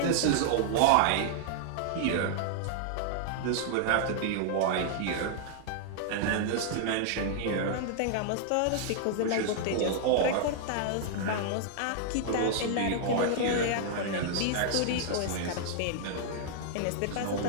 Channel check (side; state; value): both; different; correlation -0.01